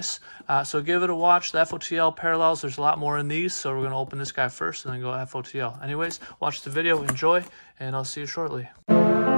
So give it a watch. The FOTL parallels, there's a lot more in these. So we're going to open this guy first and then go FOTL. Anyways, watch the video, enjoy, and I'll see you shortly.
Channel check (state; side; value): inverted; both; correlation -1.00